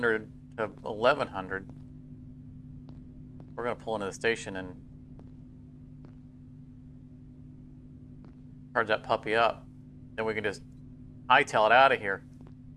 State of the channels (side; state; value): both; identical; correlation 1.00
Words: to 1100. We're gonna pull into the station and charge that puppy up. Then we can just hightail it out of here.